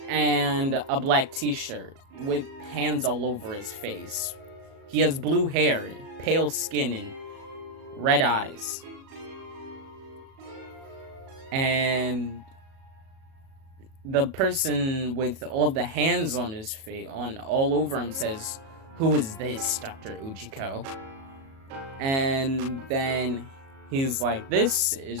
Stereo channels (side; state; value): left; late; 37 ms